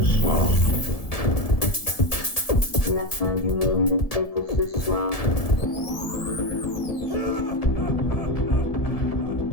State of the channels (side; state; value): right; late; 1.7 ms